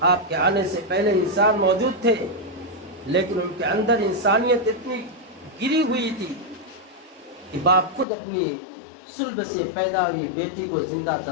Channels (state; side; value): drops out; right; at 8.1 s